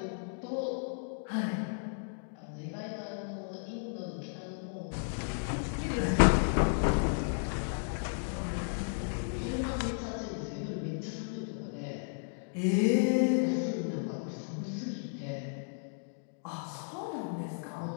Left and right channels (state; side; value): silent; right; digital silence